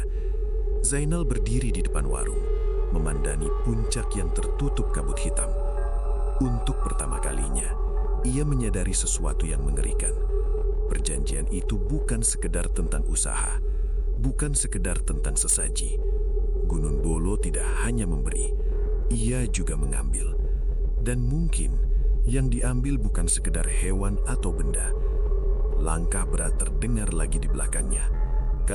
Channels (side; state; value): both; identical; correlation 1.00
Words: Zainal berdiri di depan warung, memandani puncak yang tertutup kabut hitam. Untuk pertama kalinya, ia menyadari sesuatu yang mengerikan. Perjanjian itu bukan sekedar tentang usaha, bukan sekedar tentang sesaji. Gunung Bolo tidak hanya memberi, ia juga mengambil. Dan mungkin yang diambil bukan sekedar hewan atau benda. Langkah berat terdengar lagi di belakangnya.